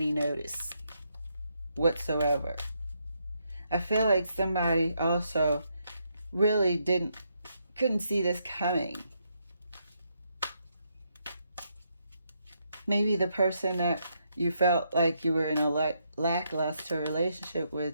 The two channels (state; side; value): inverted; both; correlation -0.78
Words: notice whatsoever. I feel like somebody also really couldn't see this coming. Maybe the person that you felt like you were in a lackluster relationship